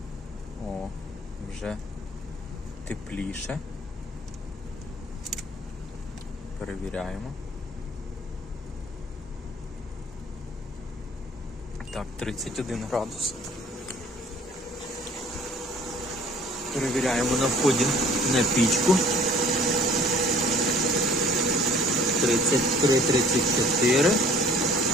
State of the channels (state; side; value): normal; both; correlation 0.53